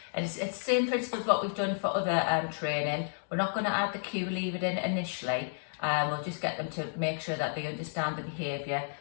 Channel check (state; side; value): silent; right; digital silence